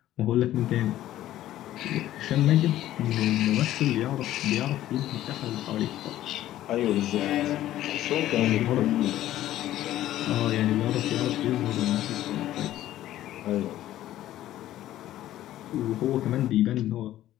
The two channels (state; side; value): quieter; right; 13.6 dB